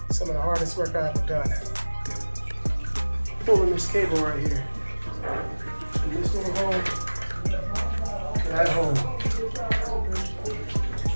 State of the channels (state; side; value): inverted; both; correlation -1.00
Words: some of the hardest work I've ever done. Pulling this cable right here, from this little hole to that hole.